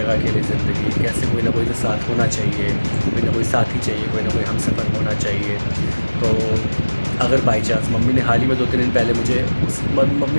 अकेले ज़िंदगी, कैसे कोई ना कोई तो साथ होना चाहिए, कोई ना कोई साथी चाहिए, कोई ना कोई हमसफ़र होना चाहिए। तो अगर बाई चांस मम्मी ने हाल ही में 2-3 दिन पहले मुझे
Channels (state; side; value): inverted; both; correlation -1.00